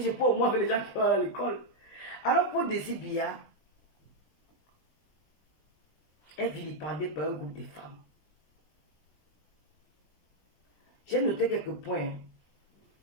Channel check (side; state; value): right; late; 20 ms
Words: peux au moins avec les gens qui vont à l'école. Alors pour Désir est vilipendé par un groupe de femmes. J'ai noté quelques points